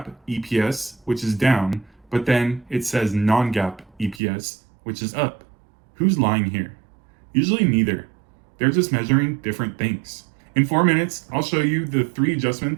EPS, which is down, but then it says non-GAAP EPS, which is up. Who's lying here? Usually neither. They're just measuring different things. In 4 minutes, I'll show you the 3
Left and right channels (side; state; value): left; drops out; at 4.2 s